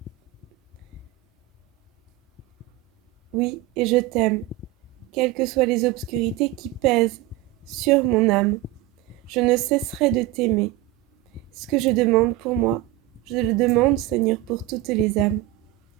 Oui, et je t'aime, quelles que soient les obscurités qui pèsent sur mon âme. Je ne cesserai de t'aimer. Ce que je demande pour moi, je le demande, Seigneur, pour toutes les âmes.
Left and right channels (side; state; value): left; quieter; 16.0 dB